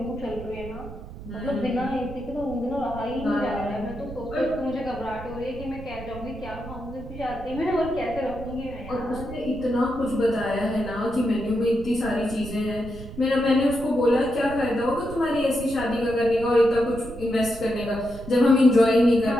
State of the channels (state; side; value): noise; right; rumble, 13 dB below the sound